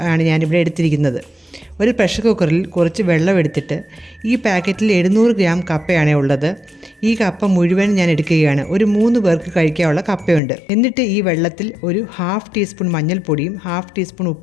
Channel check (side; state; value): right; drops out; at 10.4 s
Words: ആണ് ഞാനിവിടെ എടുത്തിരിക്കുന്നത്. ഒരു പ്രഷർ കുക്കറിൽ കുറച്ച് വെള്ളം എടുത്തിട്ട് ഈ പാക്കറ്റിൽ 700 ഗ്രാം കപ്പയാണ് ഉള്ളത്. ഈ കപ്പ മുഴുവൻ ഞാൻ എടുക്കുകയാണ്. ഒരു 3 പേർക്ക് കഴിക്കാനുള്ള കപ്പയുണ്ട്. എന്നിട്ട് ഈ വെള്ളത്തിൽ ഒരു 1/2 ടീസ്പൂൺ മഞ്ഞൾപ്പൊടിയും 1/2 ടീസ്പൂൺ